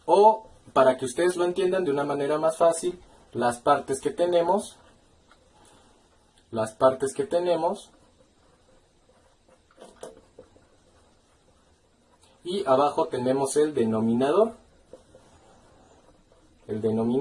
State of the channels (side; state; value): both; identical; correlation 1.00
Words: o para que ustedes lo entiendan de una manera más fácil, las partes que tenemos, y abajo tenemos el denominador. El